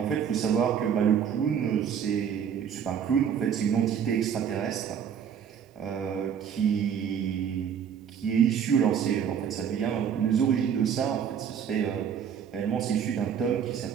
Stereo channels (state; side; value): quieter; left; 8.1 dB